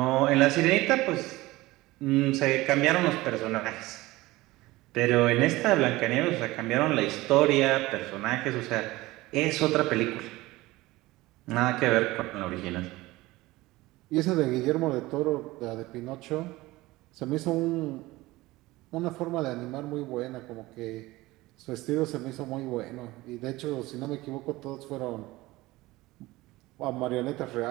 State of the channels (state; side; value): quieter; left; 19.3 dB